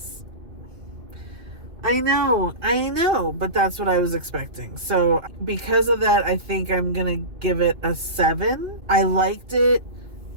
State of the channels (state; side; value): late; left; 2.6 ms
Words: I know, but that's what I was expecting. So because of that, I think I'm gonna give it a 7. I liked it.